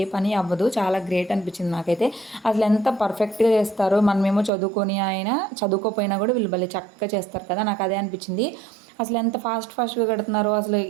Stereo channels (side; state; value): left; drops out; at 4.5 s